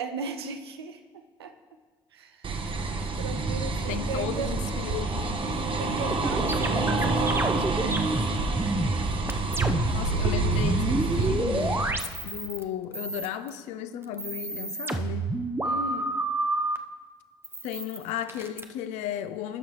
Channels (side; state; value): both; normal; correlation 0.49